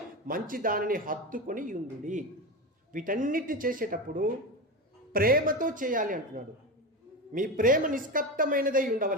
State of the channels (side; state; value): both; normal; correlation 0.20